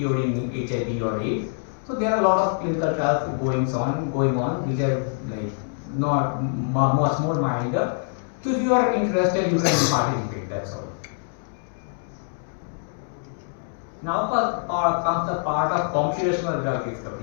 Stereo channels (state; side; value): silent; right; digital silence